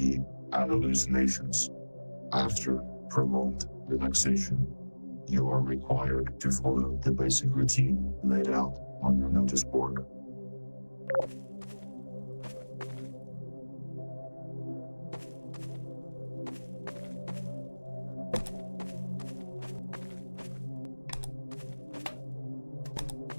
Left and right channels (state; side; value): inverted; both; correlation -1.00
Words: and hallucinations after prolonged relaxation, you are required to follow the basic routine laid out on your notice board.